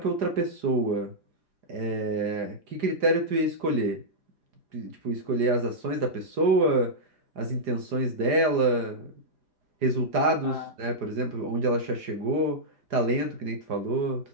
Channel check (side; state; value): left; late; 4.9 ms